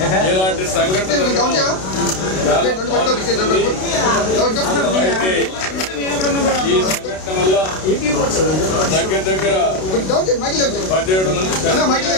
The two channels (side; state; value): right; late; 32 ms